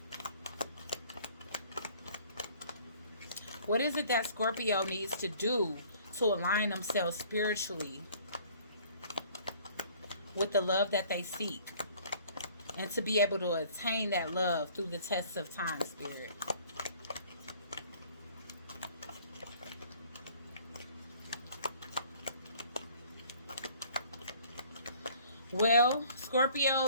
What is it that Scorpio needs to do to align themselves spiritually with the love that they seek and to be able to attain that love through the tests of time, Spirit? Well,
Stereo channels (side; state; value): both; inverted; correlation -0.55